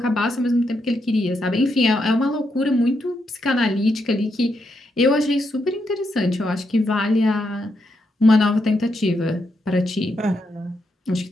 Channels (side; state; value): both; normal; correlation 0.81